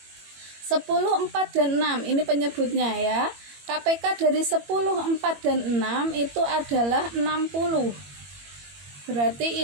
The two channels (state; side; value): late; left; 21 ms